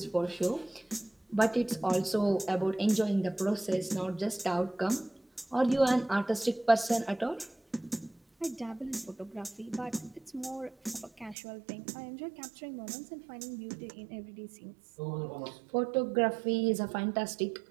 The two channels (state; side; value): drops out; left; at 11.4 s